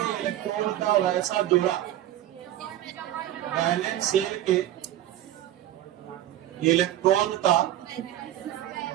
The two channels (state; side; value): quieter; left; 13.2 dB